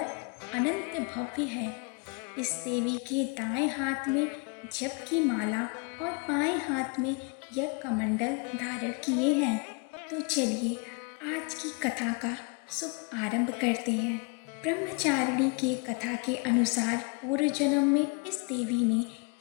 अनंत भव्य है। इस देवी के दाएं हाथ में जप की माला और बाएं हाथ में यज्ञ कमंडल धारण किए हैं। तो चलिए आज की कथा का शुभ आरंभ करते हैं। ब्रह्मचारिणी के कथा के अनुसार पूर्व जन्म में इस देवी ने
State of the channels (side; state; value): right; quieter; 32.4 dB